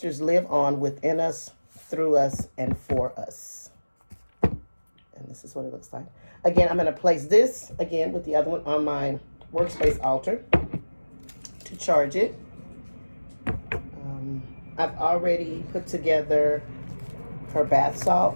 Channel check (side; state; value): both; inverted; correlation -1.00